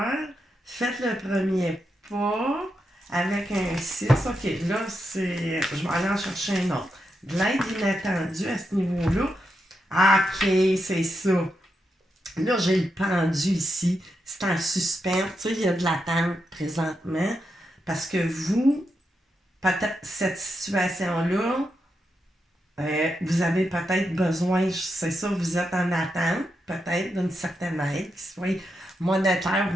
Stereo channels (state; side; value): normal; both; correlation 0.85